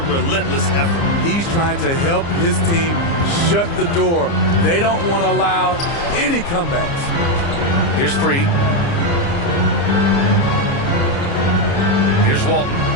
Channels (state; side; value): late; right; 29 ms